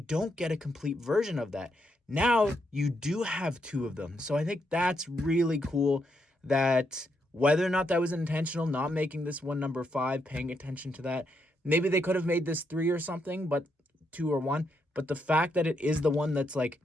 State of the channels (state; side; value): normal; both; correlation 0.79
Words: get a complete version of that. Now you do have 2 of them. So I think that's really cool, that whether or not that was intentional, not making this one number 5, paying attention to that. Maybe they could have made this 3 or something, but 2 or 1. But the fact that it is the one that's like